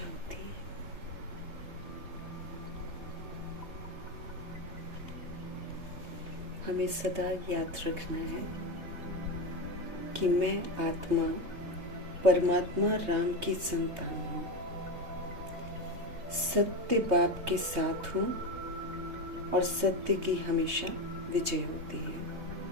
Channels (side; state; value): left; late; 3.2 ms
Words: हमें सदा याद रखना है कि मैं आत्मा परमात्मा राम की संतान हूँ, सत्य बाप के साथ हूँ और सत्य की हमेशा विजय होती है।